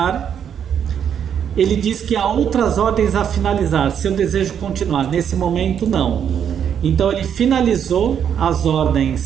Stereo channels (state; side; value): quieter; left; 8.5 dB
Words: Ele diz que há outras ordens a finalizar, se eu desejo continuar. Nesse momento, não. Então, ele finalizou as